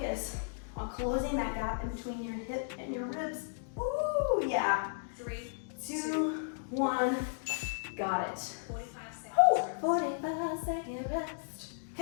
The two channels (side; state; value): right; silent; digital silence